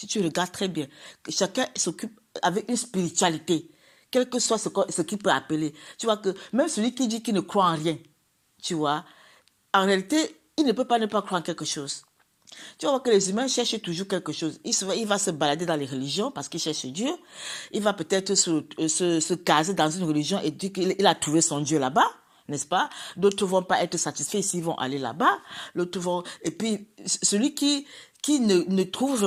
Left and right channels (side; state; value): both; identical; correlation 1.00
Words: tu regardes très bien, que chacun s'occupe avec une spiritualité, quel que soit ce qu'il peut appeler. Tu vois que même celui qui dit qu'il ne croit en rien, tu vois, en réalité, il ne peut pas ne pas croire en quelque chose. Tu vas voir que les humains cherchent toujours quelque chose. Il va se balader dans les religions parce qu'il cherche Dieu. Il va peut-être se caser dans une religion et dire qu'il a trouvé son Dieu là-bas, n'est-ce pas? D'autres ne vont pas être satisfaits s'ils vont aller là-bas. Et puis, celui qui ne trouve